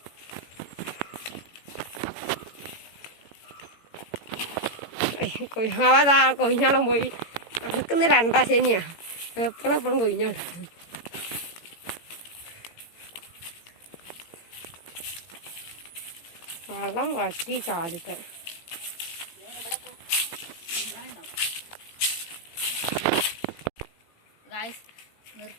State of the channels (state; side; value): late; right; 18 ms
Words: കൊയ്യാവാതാ കൊയ്ഞ്ഞാളം പോയി നടക്കുന്ന 2 ശനിയാ. എപ്പോഴും കൊയ്ഞ്ഞാട്. വെള്ളം വറ്റി ചാടിത്തെ. ഗായ്സ്